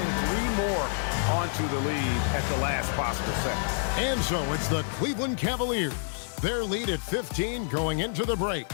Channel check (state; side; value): silent; right; 58 dB below the other